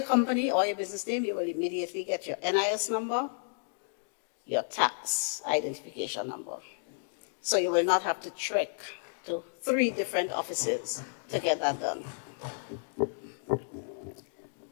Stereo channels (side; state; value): right; silent; digital silence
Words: company or your business name, you will immediately get your NIS number, your tax identification number. So you will not have to trek to 3 different offices to get that done.